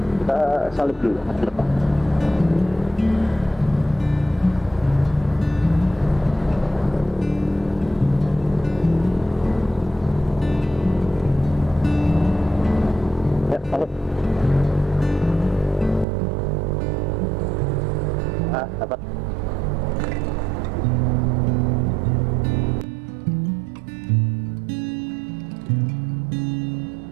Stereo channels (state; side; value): drops out; left; at 16.1 s